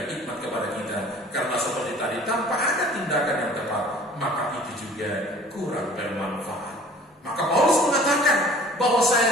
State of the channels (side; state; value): both; normal; correlation 0.49